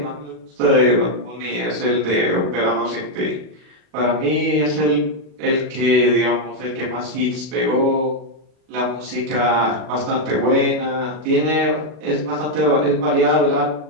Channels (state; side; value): late; left; 40 ms